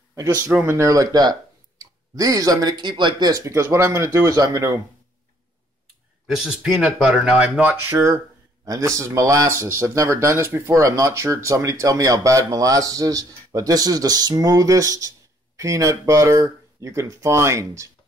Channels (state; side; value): normal; both; correlation 0.64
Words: I just threw them in there like that. These I'm going to keep like this because what I'm going to do is this is peanut butter. Now, I'm not sure, and this is molasses. I've never done this before. I'm not sure. Somebody tell me how bad molasses is. But this is the smoothest peanut butter you can find.